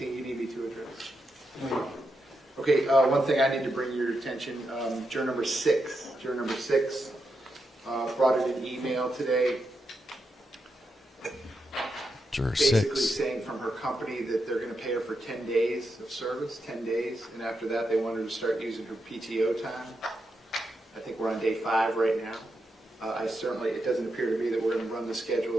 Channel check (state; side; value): normal; both; correlation 0.85